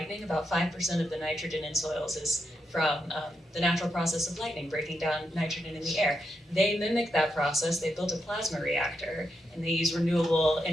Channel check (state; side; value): normal; both; correlation 0.83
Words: About 5% of the nitrogen in soils is from the natural process of lightning, breaking down nitrogen in the air. They mimic that process. They built a plasma reactor, and they use renewable